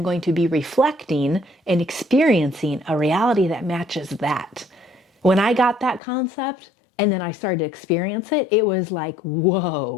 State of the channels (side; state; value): right; drops out; at 6.0 s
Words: going to be reflecting and experiencing a reality that matches that. When I got that concept and then I started to experience it, it was like,